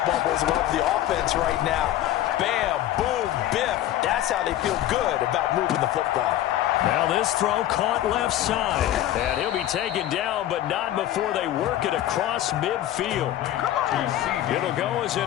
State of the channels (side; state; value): right; quieter; 13.1 dB